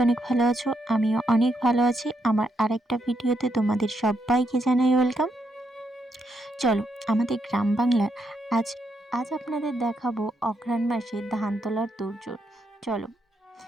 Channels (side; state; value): both; normal; correlation 0.79